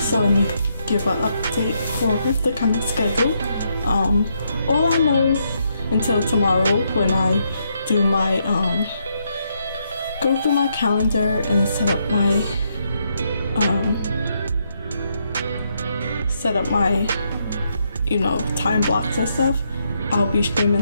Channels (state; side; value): inverted; both; correlation -0.77